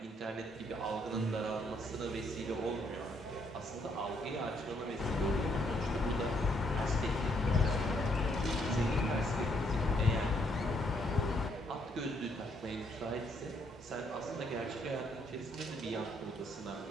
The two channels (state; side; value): normal; both; correlation 0.71